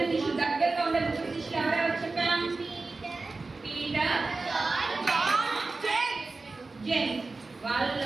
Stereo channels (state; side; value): quieter; left; 3.7 dB